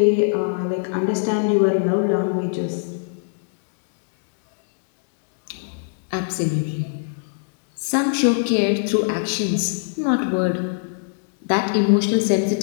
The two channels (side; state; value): right; silent; digital silence